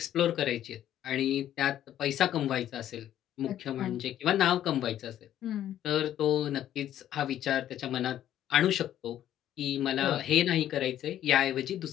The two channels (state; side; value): quieter; right; 11.6 dB